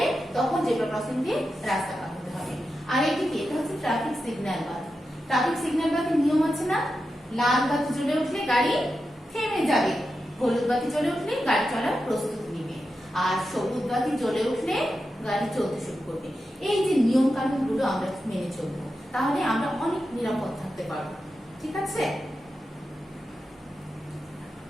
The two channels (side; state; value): both; normal; correlation 0.90